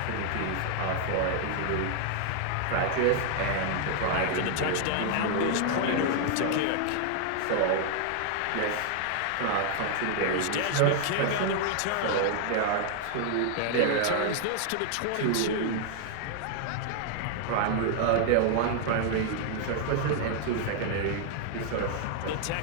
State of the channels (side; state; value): both; different; correlation 0.00